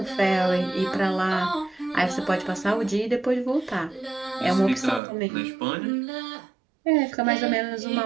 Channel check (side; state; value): left; drops out; at 5.0 s